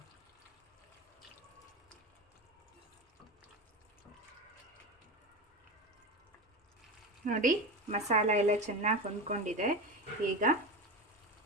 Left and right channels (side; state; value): both; normal; correlation 0.22